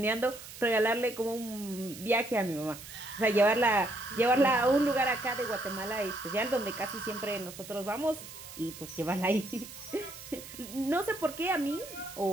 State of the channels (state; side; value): noise; right; hiss, 14 dB below the sound